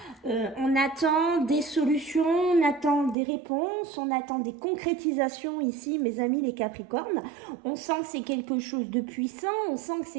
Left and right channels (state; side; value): drops out; left; at 3.2 s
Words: attend des solutions, on attend des réponses, on attend des concrétisations ici, mes amis les Capricornes. On sent que c'est quelque chose de puissant, on sent que